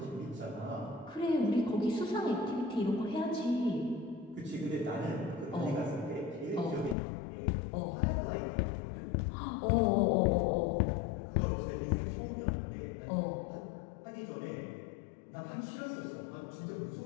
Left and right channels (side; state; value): right; drops out; at 7.0 s